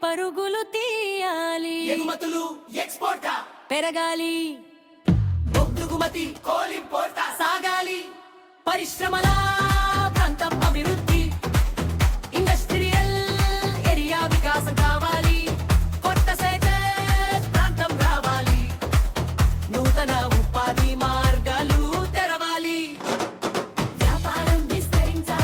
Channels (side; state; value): both; identical; correlation 1.00